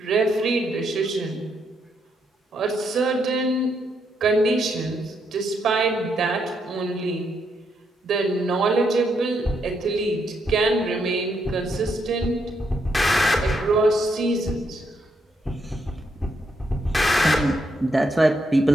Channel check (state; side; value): normal; both; correlation 0.78